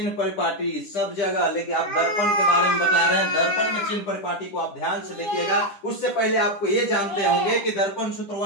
परिपाटी, सब जगह लेकिन आप दर्पण के बारे में बता रहे हैं। दर्पण में चिन्ह परिपाटी को आप ध्यान से देखिएगा। उससे पहले आपको ये जानते होंगे कि दर्पण सूत्र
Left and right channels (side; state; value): right; late; 10 ms